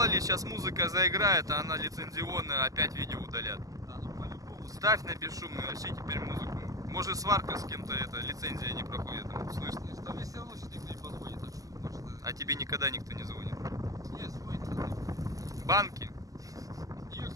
ли, сейчас музыка заиграет, а она лицензионная, опять видео удалят. Да, ну по-любому. Ставь на бесшумный, вообще теперь музыку. Может, сварка с кем-то, это лицензия не проходит, слышно? Там мне все равно сейчас никто не позвонит, так что, может, А тебе никогда никто не звонит. нет, звонит. Банки И,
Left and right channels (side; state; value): left; late; 0.17 ms